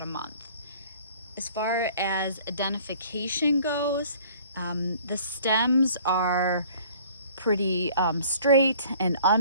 a month. As far as identification goes, the stems are pretty straight and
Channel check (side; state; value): both; inverted; correlation -0.52